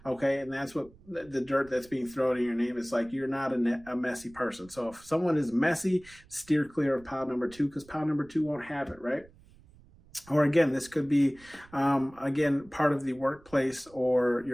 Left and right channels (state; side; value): noise; right; rumble, 25 dB below the sound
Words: Okay. And that's what the dirt that's being thrown in your name is like, you're not a messy person. So if someone is messy, steer clear of pile number 2, because pile number 2 won't have it, right? Or again, this could be, again, part of the workplace or